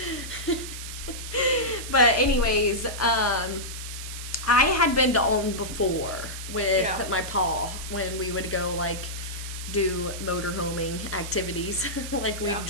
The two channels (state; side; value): noise; right; hiss, 9 dB below the sound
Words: But anyways, I had been to Alton before with my paw when we would go like do motorhoming activities. Like we